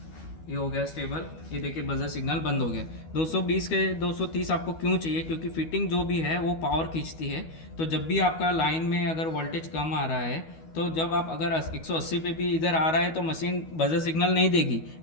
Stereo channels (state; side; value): late; right; 12 ms